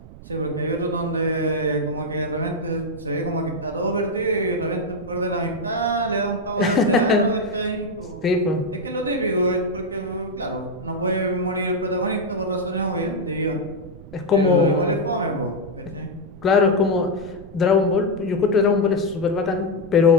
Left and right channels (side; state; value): right; noise; rumble, 18 dB below the sound